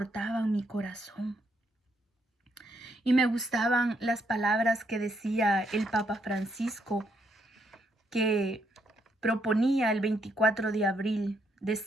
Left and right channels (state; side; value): normal; both; correlation 0.75